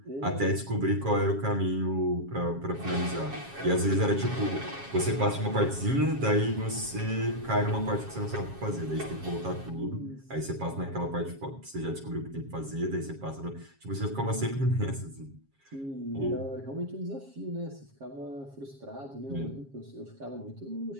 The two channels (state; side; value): late; left; 7.3 ms